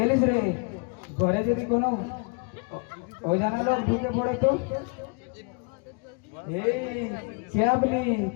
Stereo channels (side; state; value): right; quieter; 33.9 dB